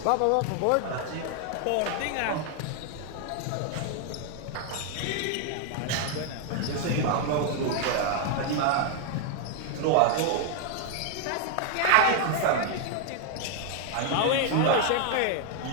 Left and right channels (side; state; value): both; different; correlation 0.00